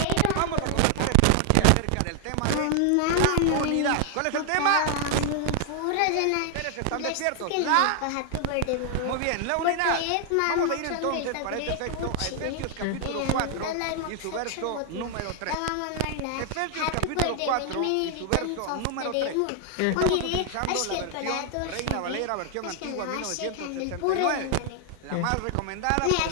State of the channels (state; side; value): different; both; correlation 0.00